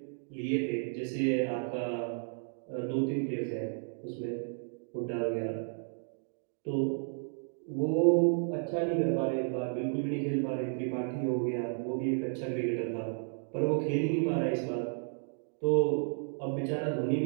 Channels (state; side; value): silent; left; 56 dB below the other